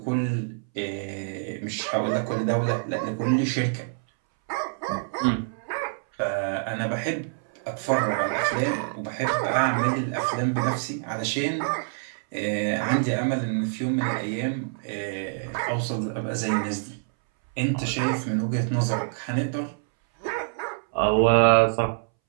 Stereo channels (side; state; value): left; silent; 61 dB below the other